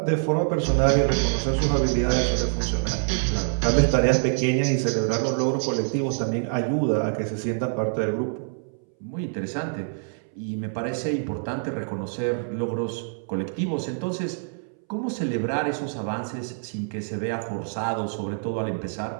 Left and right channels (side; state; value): left; silent; 61 dB below the other